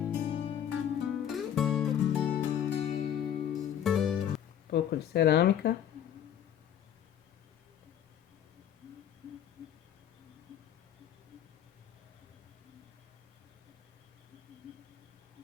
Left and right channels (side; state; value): right; quieter; 9.9 dB